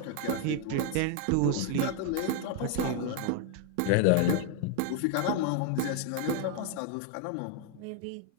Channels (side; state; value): both; different; correlation 0.00